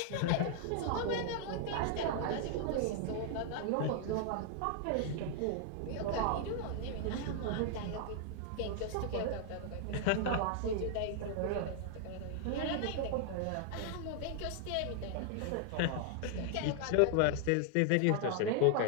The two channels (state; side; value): different; both; correlation 0.00